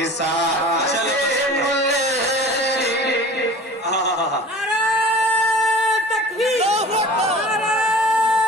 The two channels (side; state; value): both; normal; correlation 0.42